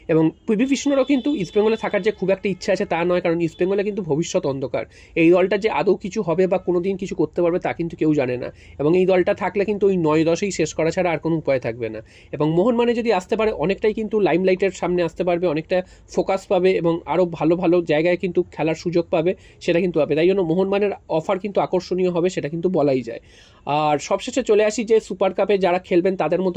এবং পিভি বিষ্ণুরও কিন্তু ইস্টবেঙ্গলে থাকার যে খুব একটা ইচ্ছা আছে তা নয়, কারণ ইস্টবেঙ্গলে কিন্তু ভবিষ্যৎ অন্ধকার। এই দলটা যে আদৌ কিছু হবে বা কোনোদিন কিছু করতে পারবে তা কিন্তু কেউ জানে না, এবং এই দলটা থাকলে কিন্তু ওই 9-10এই শেষ করা ছাড়া আর কোনো উপায় থাকবে না। এবং মোহনবাগানে যদি আসতে পারে, অনেকটাই কিন্তু লাইমলাইটের সামনে আসতে পারবে, অনেকটা ফোকাস পাবে, এবং আরও ভালো ভালো জায়গায় কিন্তু খেলার সুযোগ পাবে, সেটা কিন্তু পাবে। তাই জন্য মোহনবাগানের অফার কিন্তু আকর্ষণীয় হবে, সেটা কিন্তু বলাই যায়। আর সবশেষে চলে আসি যে সুপার কাপে কাপে যারা খেলবেন তাদের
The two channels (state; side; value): identical; both; correlation 1.00